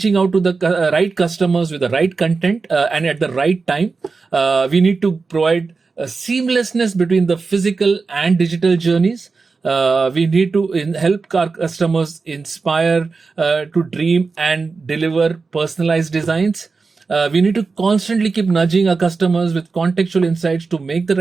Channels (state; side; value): quieter; left; 4.4 dB